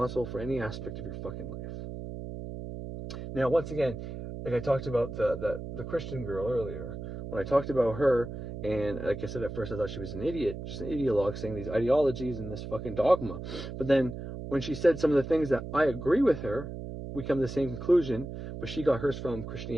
for any aspect of your fucking life. Now, once again, like I talked about the Christian girl earlier, when I talked about her, and like I said, at first I thought she was an idiot, just an ideologue saying these ideologies and this fucking dogma. But then when she said some of the things that I agree with her, we come to the same conclusion, but she got hers from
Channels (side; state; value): right; noise; hum, 8 dB below the sound